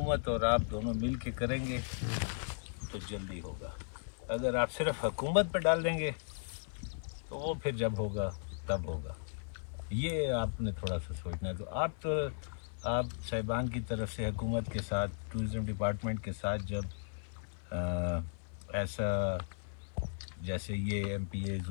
और आप दोनों मिल के करेंगे तो जल्दी होगा। अगर आप सिर्फ हुकूमत पे डाल देंगे तो वो फिर जब होगा तब होगा। ये आपने थोड़ा सा सोचना है। तो आप साहिबान की तरफ से हुकूमत के साथ, टूरिज़म डिपार्टमेंट के साथ जब ऐसा जैसे ये MPA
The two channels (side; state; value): right; silent; digital silence